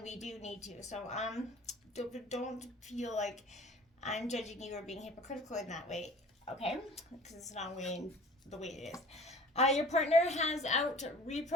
we do need to. So don't feel like I'm judging you or being hypocritical in that way, okay? Because it's not the way it is. Your partner has out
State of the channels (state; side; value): normal; both; correlation 0.47